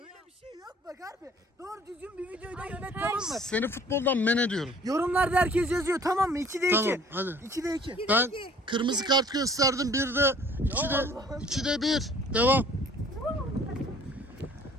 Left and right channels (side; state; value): both; normal; correlation 0.53